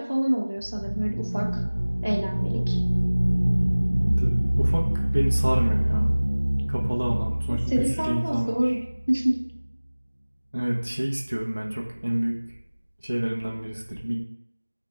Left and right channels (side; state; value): both; inverted; correlation -1.00